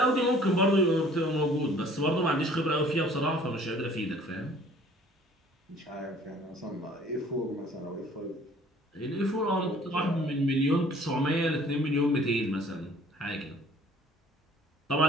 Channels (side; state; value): both; normal; correlation 0.54